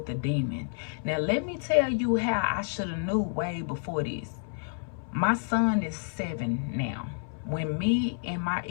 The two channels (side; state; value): right; silent; 58 dB below the other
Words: the demon. Now let me tell you how I should have knew way before this. My son is 7 now. When me and my